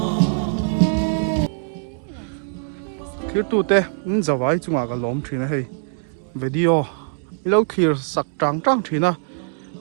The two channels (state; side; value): silent; left; digital silence